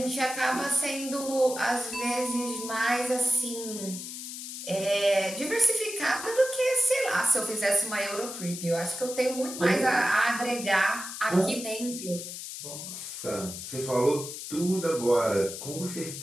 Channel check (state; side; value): noise; left; hiss, 9 dB below the sound